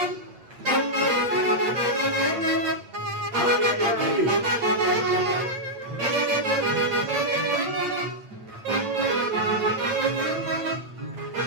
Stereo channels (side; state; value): left; late; 8.8 ms